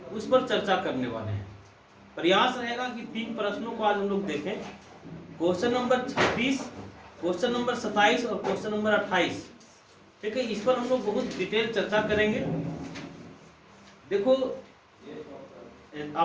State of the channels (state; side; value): identical; both; correlation 1.00